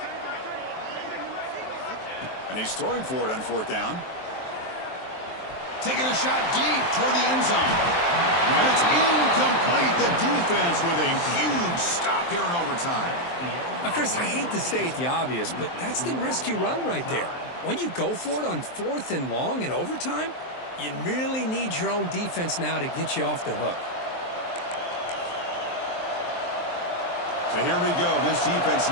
And he's throwing for it on 4th down. Taking a shot deep toward the end zone. And it's incomplete. The defense with a huge stop here in overtime. Now, Chris, I hate to state the obvious, but that's the risk you run right there. When you go for it on 4th and long in overtime, you really need your own defense now to get you off the hook. So here we go. This defense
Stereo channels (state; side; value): late; right; 23 ms